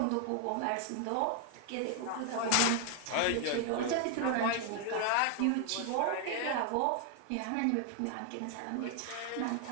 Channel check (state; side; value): different; both; correlation 0.00